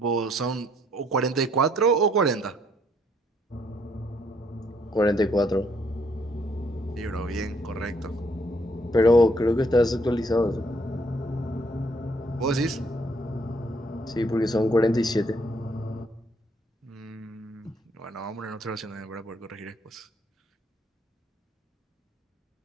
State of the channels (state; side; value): normal; both; correlation 0.68